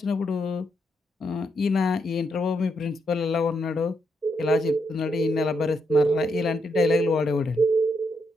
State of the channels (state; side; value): normal; both; correlation 0.79